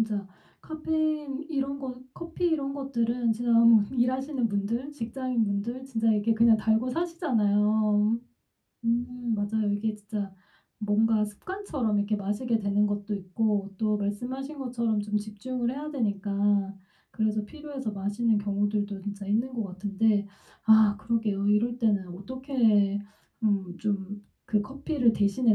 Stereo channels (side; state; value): both; identical; correlation 1.00